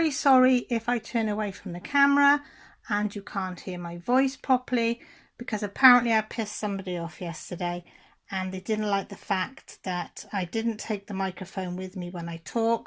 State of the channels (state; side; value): identical; both; correlation 1.00